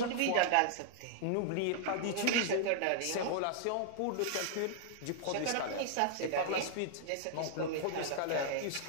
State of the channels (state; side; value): different; both; correlation -0.01